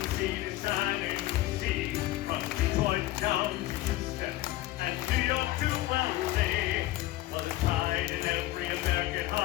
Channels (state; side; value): quieter; right; 16.4 dB